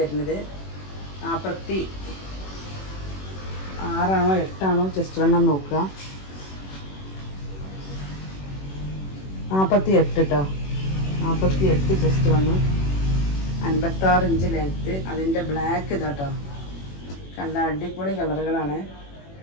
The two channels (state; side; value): late; right; 21 ms